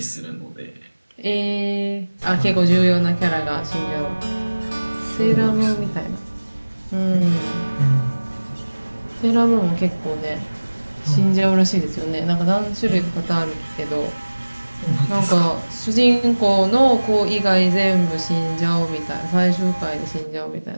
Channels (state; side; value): inverted; both; correlation -1.00